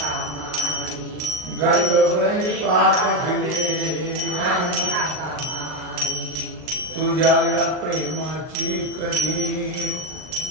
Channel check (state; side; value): late; left; 39 ms